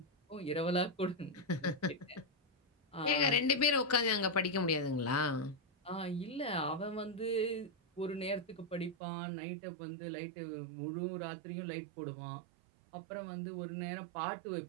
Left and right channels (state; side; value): drops out; left; at 9.0 s